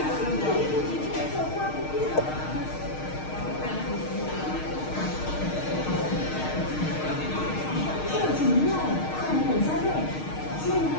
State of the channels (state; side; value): late; right; 6.5 ms